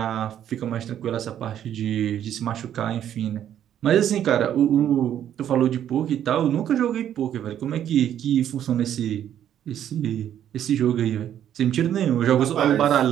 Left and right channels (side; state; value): left; quieter; 10.4 dB